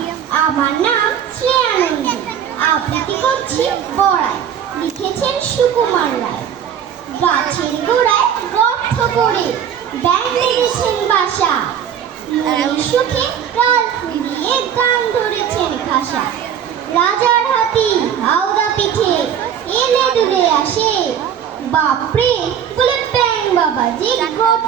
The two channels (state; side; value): quieter; left; 8.8 dB